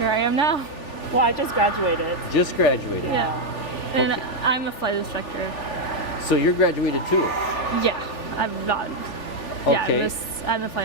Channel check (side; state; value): right; late; 3.4 ms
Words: I am now. Well, I just graduated. Just graduated. Yeah. And I'm a flight instructor. So you're graduated too? Yeah, I'm not. Okay. Yeah, I'm a flight